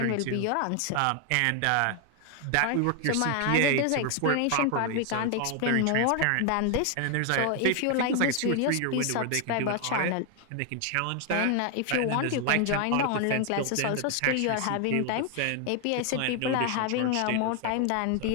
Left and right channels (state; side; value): different; both; correlation 0.00